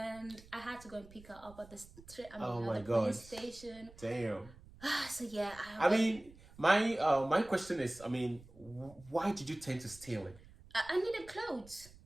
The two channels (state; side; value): noise; right; rumble, 21 dB below the sound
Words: I had to go and pick her up at the police station. Damn. So yeah. I mean, my question is, I mean, why did you tend to steal it? I needed clothes.